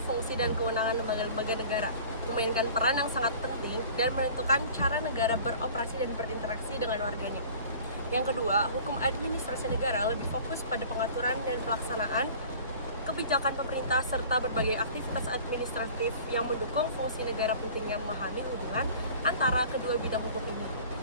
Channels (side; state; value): both; inverted; correlation -0.45